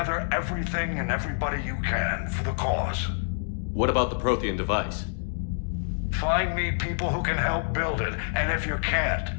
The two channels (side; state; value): right; silent; digital silence